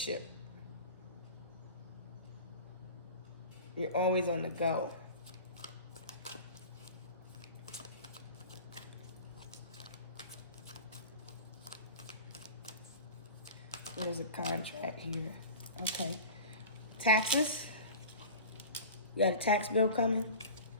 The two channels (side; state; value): both; inverted; correlation -0.37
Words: You're always on the go. There's a contract here. Okay. Taxes. You got a tax bill coming?